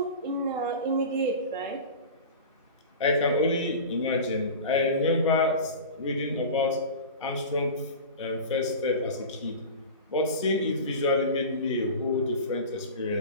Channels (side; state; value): both; inverted; correlation -0.32